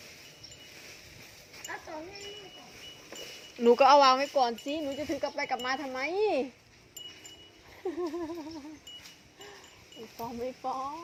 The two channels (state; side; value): identical; both; correlation 1.00